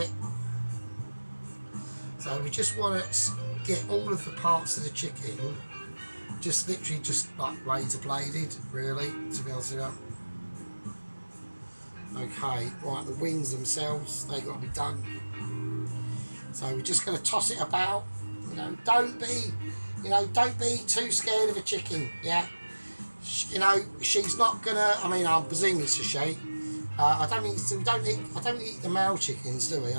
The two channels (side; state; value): both; inverted; correlation -1.00